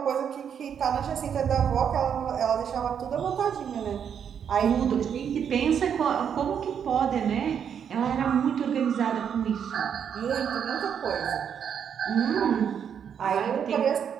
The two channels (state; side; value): quieter; left; 8.0 dB